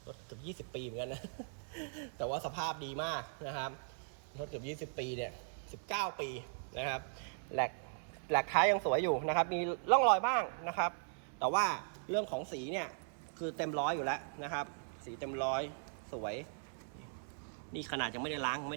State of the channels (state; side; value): silent; left; 52 dB below the other